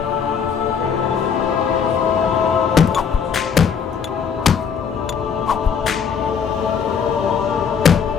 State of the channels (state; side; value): quieter; right; 6.8 dB